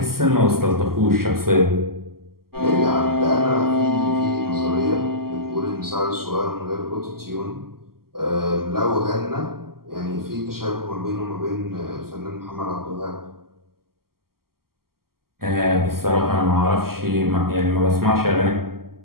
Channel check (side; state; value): left; late; 0.93 ms